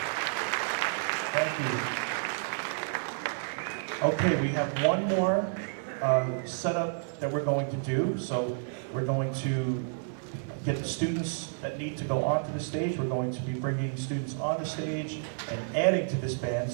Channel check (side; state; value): left; silent; 58 dB below the other